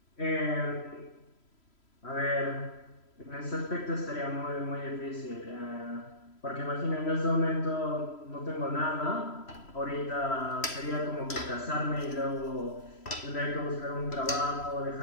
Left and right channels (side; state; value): right; late; 3.0 ms